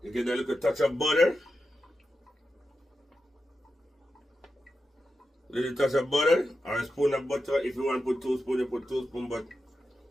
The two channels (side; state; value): both; normal; correlation 0.89